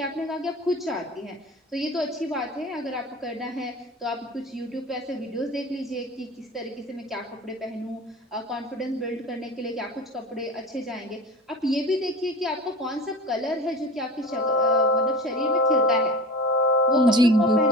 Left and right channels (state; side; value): normal; both; correlation 0.34